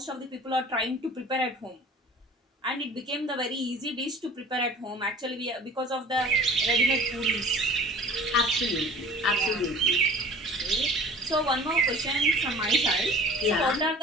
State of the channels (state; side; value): normal; both; correlation 0.45